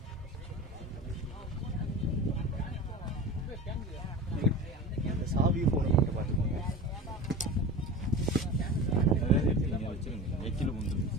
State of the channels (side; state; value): both; normal; correlation 0.31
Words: சாவி போன் மட்டும் பாத்துக்கோங்க. அதாவது நீங்க வச்சிருங்க. எக்கில முந்து